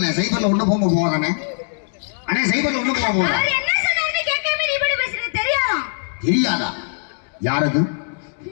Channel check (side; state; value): right; silent; 65 dB below the other